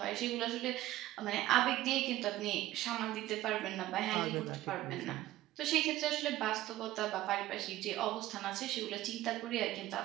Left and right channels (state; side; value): quieter; left; 15.5 dB